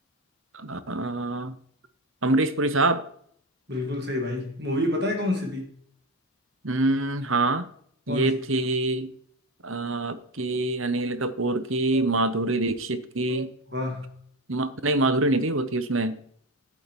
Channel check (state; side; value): normal; both; correlation 0.20